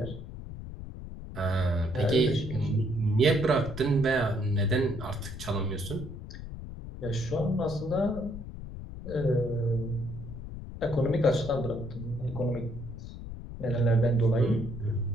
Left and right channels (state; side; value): noise; left; rumble, 10 dB below the sound